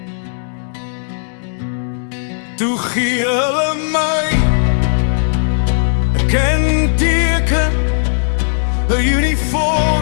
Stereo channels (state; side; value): silent; right; 69 dB below the other